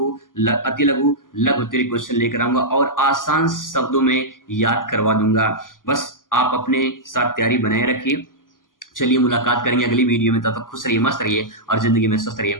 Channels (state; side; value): late; right; 0.89 ms